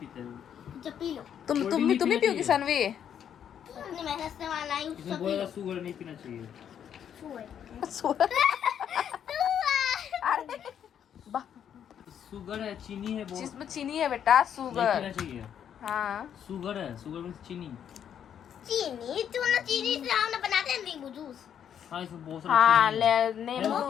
जब पी लो। तुम भी पियोगी सानवी? अपनी मेहनत से वाला ही इसमें सब पी बोला लो। शुगर नहीं पीना चाहिए। अरे बा- शुगर है, चीनी है, बहुत जिसमें चीनी है बेटा, नहीं शुगर। पीना चाहिए। हाँ शुगर है, शुगर में चीनी। चीनी चीनी से हम बनाते हैं नींबू जूस। हाँ इसमें बहुत सारी हाँ चीनी है। ले हेल्थ नींबू।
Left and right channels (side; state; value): right; quieter; 8.9 dB